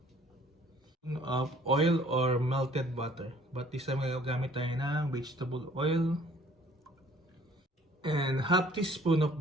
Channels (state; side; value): normal; both; correlation 0.56